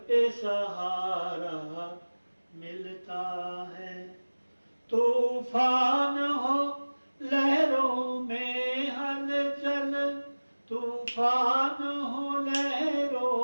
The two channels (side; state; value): both; inverted; correlation -1.00